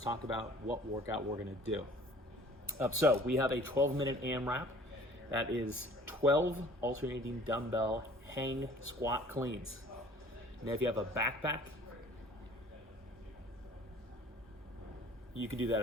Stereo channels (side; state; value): both; normal; correlation 0.51